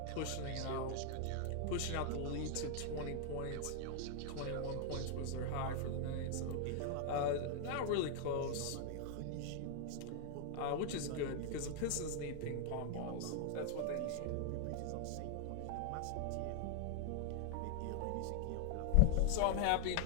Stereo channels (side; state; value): both; different; correlation 0.00